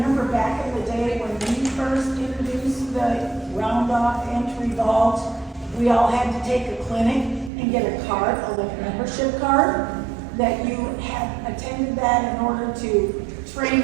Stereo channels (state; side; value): drops out; left; at 7.5 s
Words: back in the day when we first introduced the round-off entry vault, we all had to take a clinic and get a card, a membership card, that you had attended that in order to train